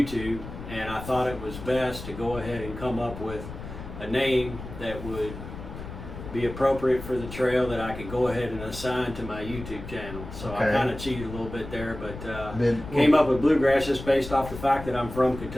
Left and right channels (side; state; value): left; noise; rumble, 11 dB below the sound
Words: and I thought it was best to go ahead and come up with a name that would be appropriate for the trail that I could go ahead and assign to my YouTube channel. So Okay. I kind of cheated a little bit there, but Been- came up with Bluegrass just based off the fact that I'm from